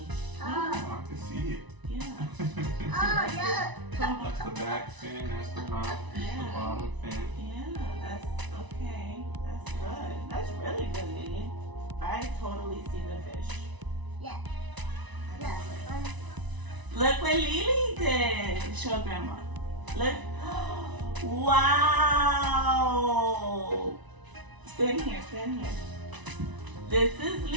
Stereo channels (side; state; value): left; late; 1.0 ms